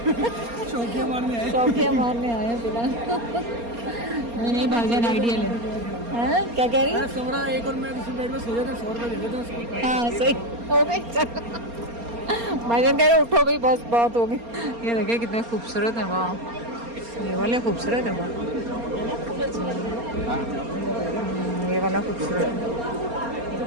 शौकिया मारने आए हैं फिलहाल। नहीं भाईजान आइडिया ले, हाँ क्या कह रही है? सोरा एक और मैं दूसरे बेड में सो जाता, 100 रुपये दे देता हूँ। हाँ सही हो गई, चलो भाईजान कह रहे उठो भाई, बस बहुत हो गई। ये देखिए कितने खूबसूरत है, वाह ये वाले खूबसूरत है, वाह ये वाला खूबसूरत है।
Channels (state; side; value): late; left; 4.3 ms